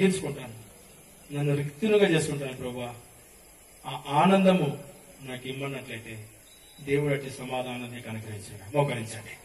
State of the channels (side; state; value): both; identical; correlation 1.00